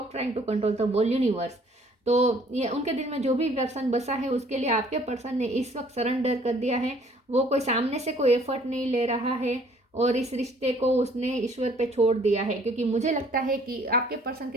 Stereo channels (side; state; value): both; normal; correlation 0.58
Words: trying to control the whole universe. तो ये उनके दिल में जो भी पर्सन बसा है उसके लिए आपके पर्सन ने इस वक्त सरेंडर कर दिया है। वो कोई सामने से कोई एफर्ट नहीं ले रहा है और इस रिश्ते को उसने ईश्वर पे छोड़ दिया है, क्योंकि मुझे लगता है कि आपके पर्सन